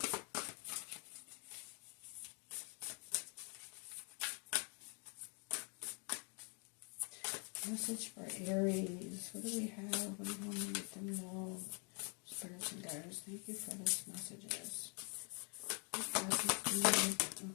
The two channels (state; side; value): quieter; right; 36.8 dB